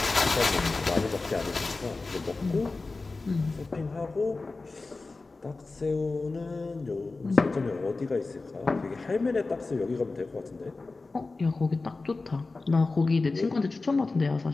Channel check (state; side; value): quieter; right; 3.6 dB